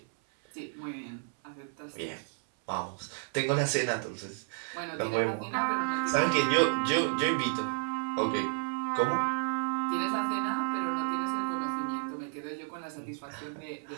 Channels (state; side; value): silent; left; 57 dB below the other